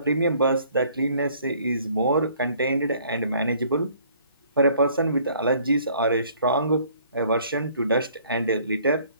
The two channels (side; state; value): both; inverted; correlation -0.59